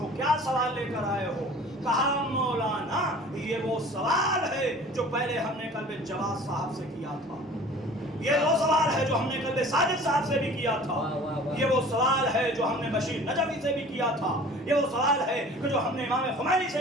क्या सवाल लेकर आए हो? कहा मौलाना ये वो सवाल है जो पहले हमने कल्बे जवाद साहब से किया था, ये वो सवाल है जो हमने कल्बे साजिद साहब से भी किया था, ये वो सवाल है जो हमने बशीर नजवी से भी किया था, ये वो सवाल है कि जो हमने इमाम खुमैनी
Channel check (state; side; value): normal; both; correlation 0.46